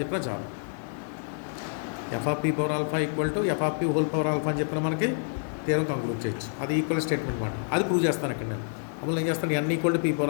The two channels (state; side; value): silent; right; digital silence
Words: చెప్పినా చాలు. F of P power alpha equal to F of P whole power alpha అని చెప్పిన మనకి థియరం కంక్లూడ్ చేయొచ్చు. అది ఈక్వల్ స్టేట్మెంట్ మాట. అది ప్రూవ్ చేస్తాను ఇక్కడ నేను. అప్పుడు ఏం చేస్తాను, N equal to P